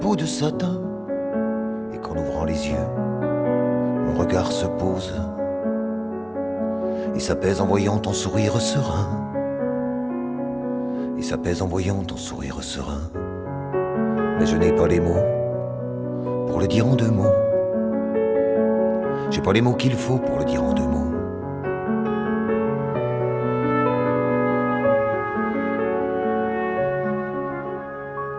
de satin, et qu'en ouvrant les yeux mon regard se pose et s'apaise en voyant ton sourire serein. Et s'apaise en voyant ton sourire serein. Mais je n'ai pas les mots pour le dire en deux mots. J'ai pas les mots qu'il faut pour le dire en deux mots.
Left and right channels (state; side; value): identical; both; correlation 1.00